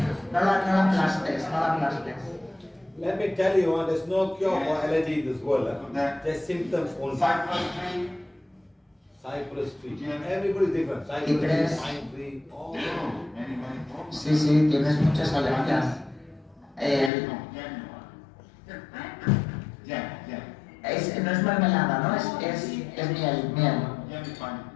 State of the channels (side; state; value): right; drops out; at 17.1 s